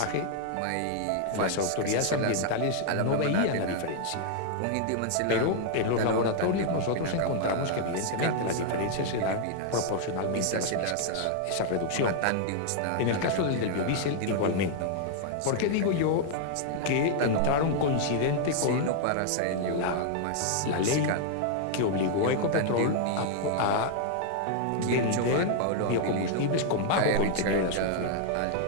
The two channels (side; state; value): both; different; correlation 0.00